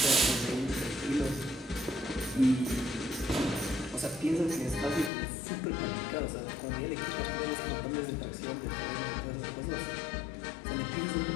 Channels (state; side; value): drops out; right; at 5.1 s